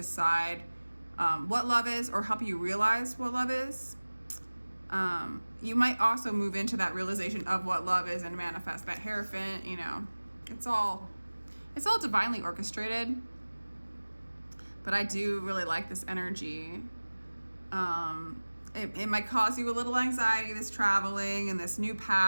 what love is, or help you realize what love is. You might also move into that realization of what love is and manifest that Hierophant. You know, it's all divinely orchestrated. But I do really like this energy. It might cause you a little anxiety, this traveling and this new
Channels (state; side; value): inverted; both; correlation -1.00